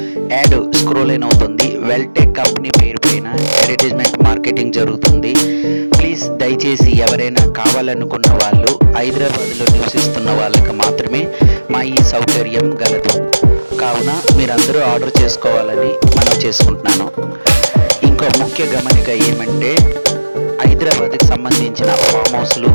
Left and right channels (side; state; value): both; inverted; correlation -1.00